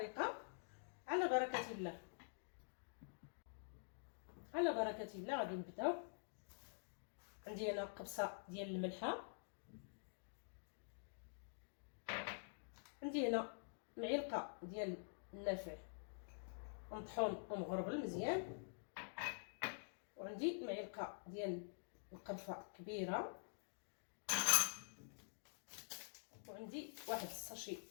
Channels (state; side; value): silent; right; digital silence